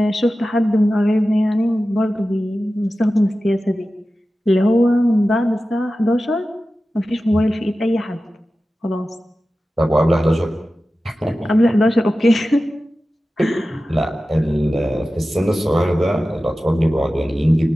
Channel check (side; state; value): both; normal; correlation 0.94